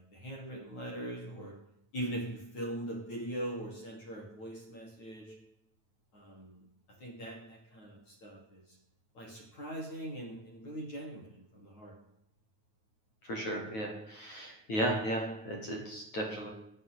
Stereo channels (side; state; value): right; late; 9.3 ms